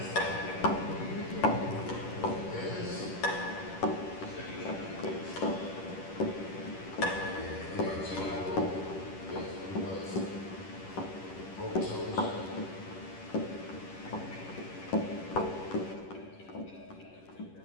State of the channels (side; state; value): right; late; 10 ms